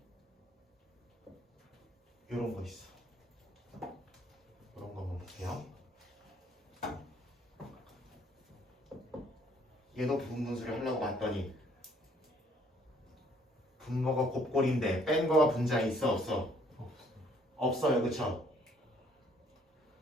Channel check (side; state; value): both; normal; correlation 0.63